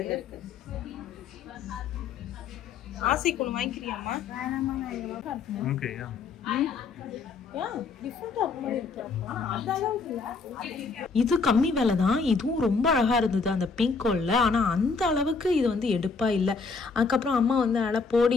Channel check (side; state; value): right; quieter; 4.7 dB